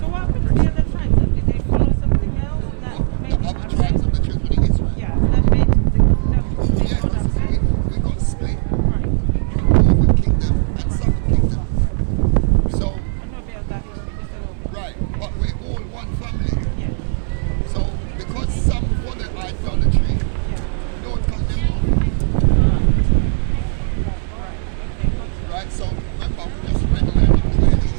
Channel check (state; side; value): silent; left; 62 dB below the other